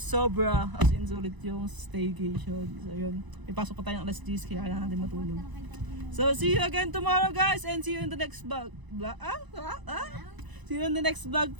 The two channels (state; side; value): late; left; 1.0 ms